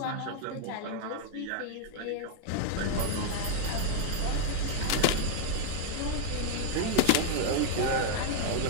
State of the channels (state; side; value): different; both; correlation 0.00